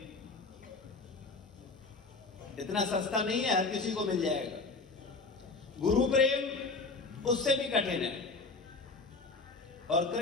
इतना सस्ता नहीं है, हर किसी को मिल जाएगा। गुरु प्रेम उससे भी कठिन है और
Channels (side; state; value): right; quieter; 3.9 dB